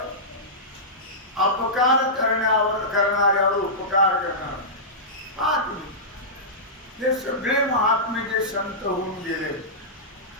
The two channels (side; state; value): both; normal; correlation -0.15